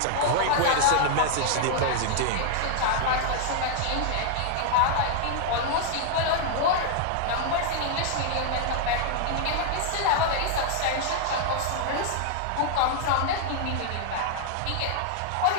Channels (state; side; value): different; both; correlation 0.00